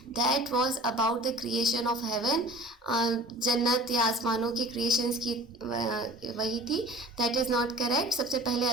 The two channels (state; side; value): normal; both; correlation 0.43